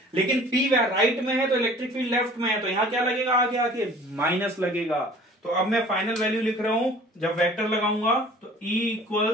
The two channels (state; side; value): normal; both; correlation 0.48